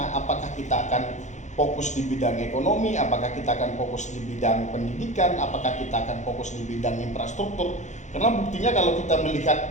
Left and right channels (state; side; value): late; right; 0.35 ms